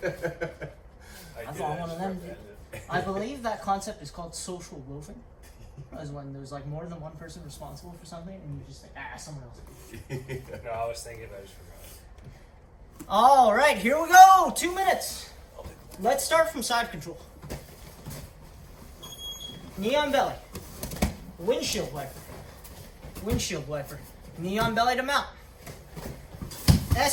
I thought one of them did. I believe that concept is called social loafing. As when there's like more than one person responsible for something and you just say, someone else. No, I was thinking, I just forgot. All right, here we go. 2 minutes. Let's start from side control. Knee on belly. Windshield wiper. Windshield wiper. Knee on belly to mount.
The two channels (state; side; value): identical; both; correlation 1.00